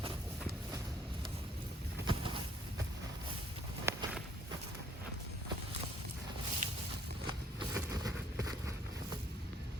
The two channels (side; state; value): both; normal; correlation 0.63